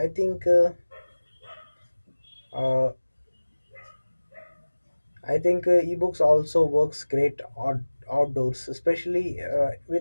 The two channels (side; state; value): both; inverted; correlation -1.00